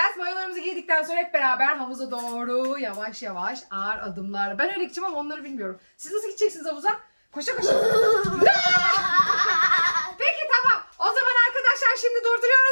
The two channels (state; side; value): inverted; both; correlation -1.00